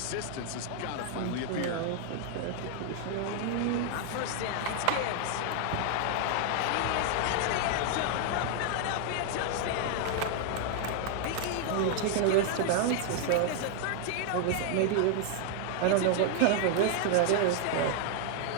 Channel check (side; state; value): both; different; correlation 0.00